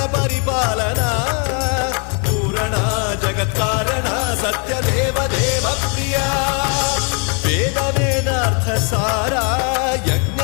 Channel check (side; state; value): right; quieter; 38.1 dB